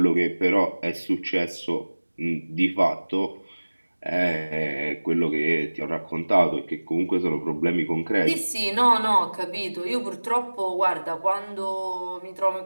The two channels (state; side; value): inverted; both; correlation -1.00